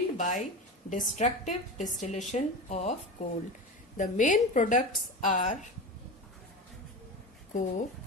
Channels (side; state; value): both; normal; correlation 0.26